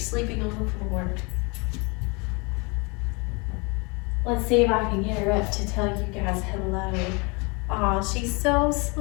on the floor. Let's see if I can get her up to tell you guys hello. Aw, she's so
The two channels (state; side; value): quieter; right; 29.7 dB